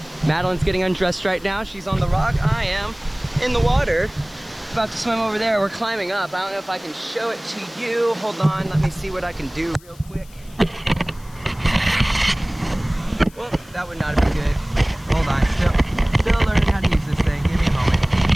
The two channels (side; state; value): left; noise; hiss, 25 dB below the sound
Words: Madeline's getting undressed right now. She's on the rock. I am in the water. About to swim over there. We're climbing up. I don't know if I can show it to you. Hold on, let me see what I can do real quick. Well, that would not have been good. Hold on, still learning how to use this thing. Give me a moment.